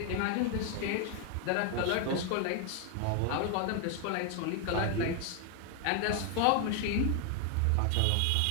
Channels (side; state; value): both; different; correlation 0.00